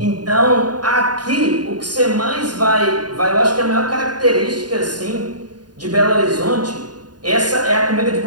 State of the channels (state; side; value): late; left; 0.70 ms